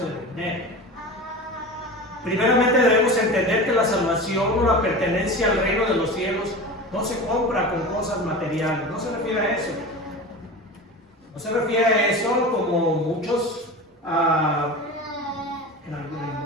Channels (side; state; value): both; normal; correlation 0.31